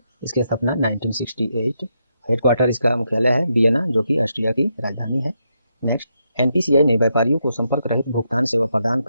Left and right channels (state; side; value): inverted; both; correlation -0.81